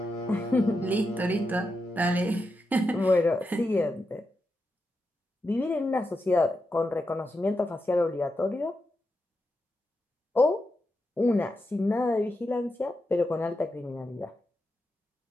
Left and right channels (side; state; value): both; normal; correlation 0.87